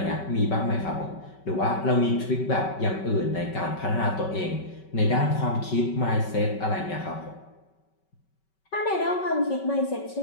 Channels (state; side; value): late; right; 5.3 ms